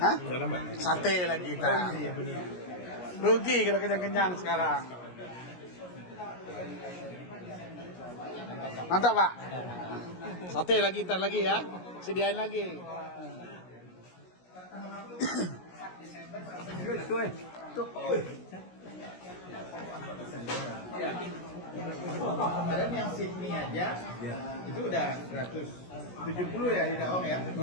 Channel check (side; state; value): right; late; 17 ms